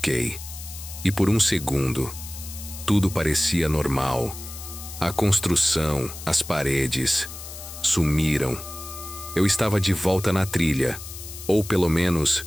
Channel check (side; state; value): left; noise; hiss, 12 dB below the sound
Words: E por um segundo, tudo parecia normal. A construção, as paredes, sumiram. Eu estava de volta na trilha, ou pelo menos